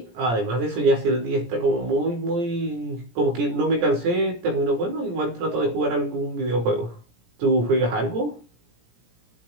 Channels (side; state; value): left; late; 17 ms